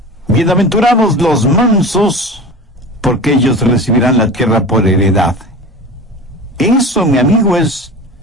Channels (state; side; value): normal; both; correlation 0.32